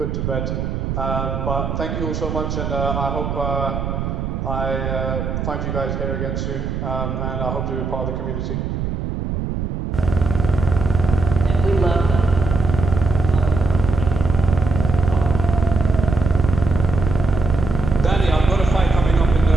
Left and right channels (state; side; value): noise; right; rumble, 3 dB below the sound